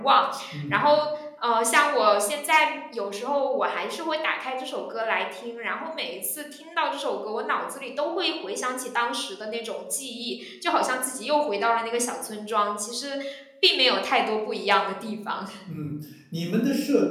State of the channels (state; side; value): identical; both; correlation 1.00